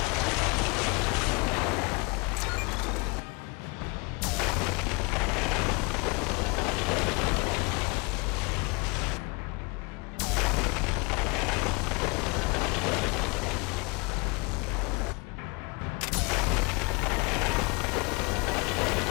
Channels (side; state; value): right; quieter; 29.7 dB